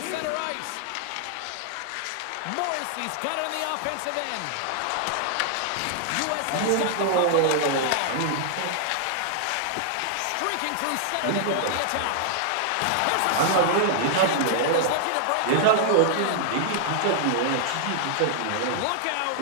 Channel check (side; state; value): both; different; correlation -0.01